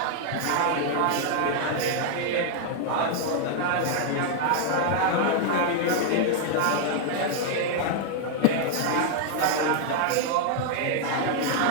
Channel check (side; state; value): both; different; correlation 0.00